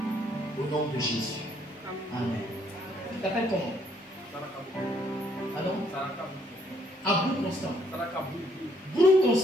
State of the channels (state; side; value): normal; both; correlation 0.68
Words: Au nom de Jésus. Amen. Tu t'appelles comment? Pardon? Abou Constant. Brou